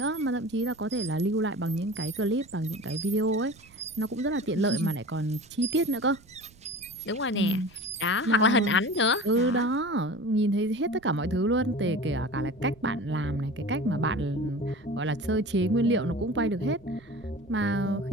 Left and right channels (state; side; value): noise; right; rumble, 25 dB below the sound